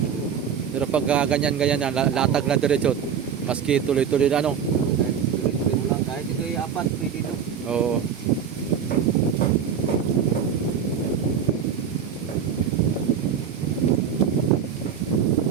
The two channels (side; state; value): left; quieter; 7.6 dB